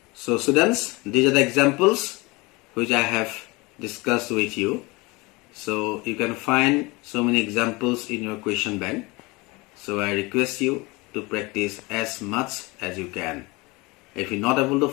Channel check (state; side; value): quieter; right; 24.5 dB